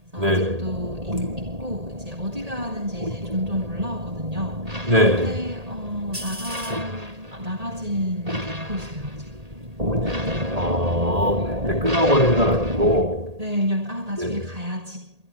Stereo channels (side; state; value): left; late; 1.8 ms